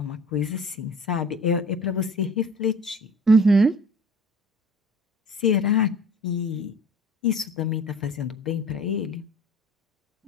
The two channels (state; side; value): normal; both; correlation 0.44